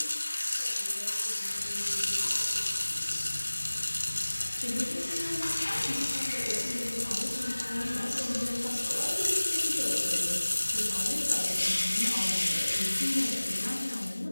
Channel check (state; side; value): inverted; both; correlation -1.00